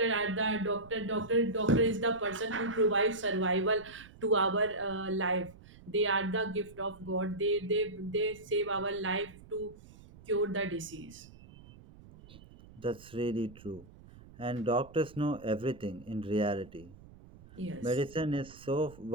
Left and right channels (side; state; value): right; noise; rumble, 21 dB below the sound